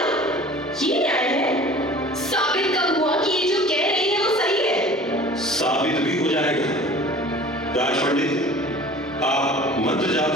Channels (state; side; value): normal; both; correlation 0.44